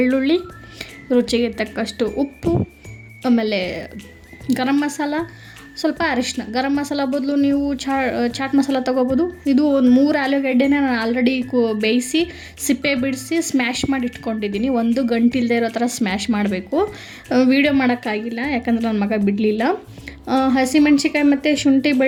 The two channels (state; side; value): identical; both; correlation 1.00